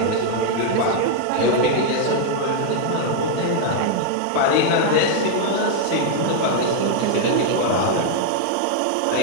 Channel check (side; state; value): both; different; correlation 0.00